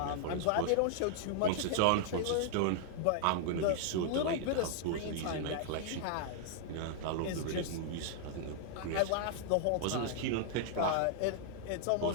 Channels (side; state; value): both; different; correlation -0.01